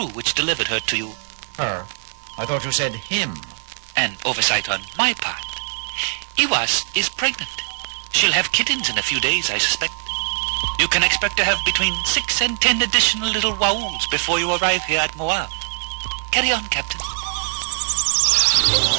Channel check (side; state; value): left; silent; digital silence